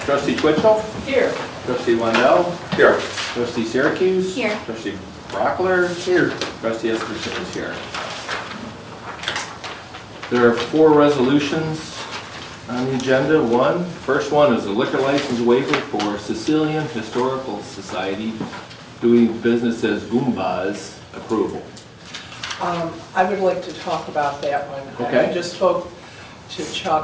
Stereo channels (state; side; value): identical; both; correlation 1.00